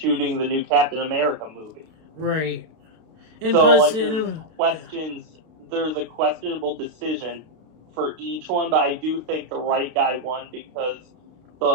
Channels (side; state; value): left; late; 32 ms